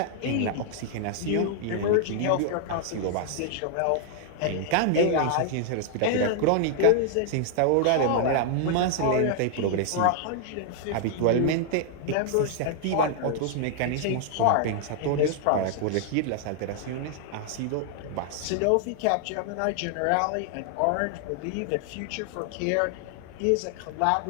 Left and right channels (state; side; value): different; both; correlation 0.00